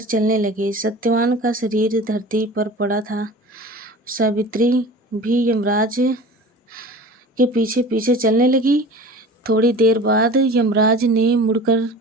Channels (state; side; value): normal; both; correlation 0.39